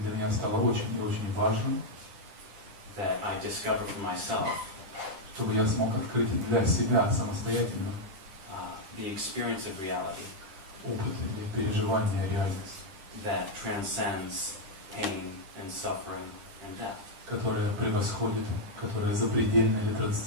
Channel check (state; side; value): late; left; 9.8 ms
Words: меня стало очень и очень важным, that I discover for myself чтобы я смог открыть для себя самостоятельно the experience of reality опыт или переживание реальности, that transcends pain and suffering and death. которая превосходит, которая запредельна или